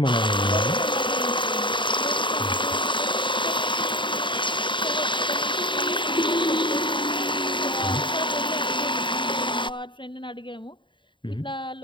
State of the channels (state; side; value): late; right; 0.23 ms